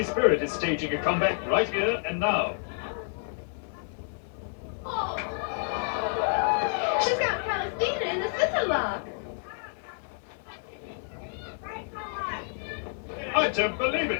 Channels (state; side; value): silent; right; digital silence